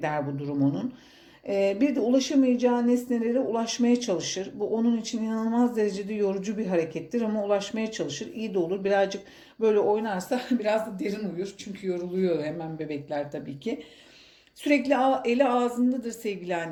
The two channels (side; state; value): both; identical; correlation 1.00